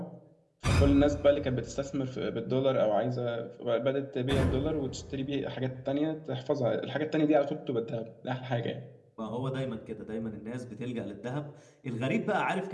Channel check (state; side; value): identical; both; correlation 1.00